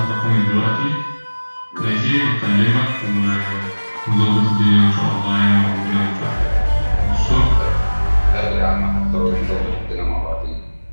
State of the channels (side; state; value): both; inverted; correlation -1.00